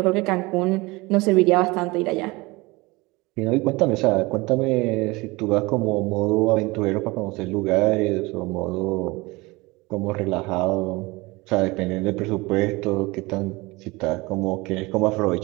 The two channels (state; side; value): quieter; left; 23.2 dB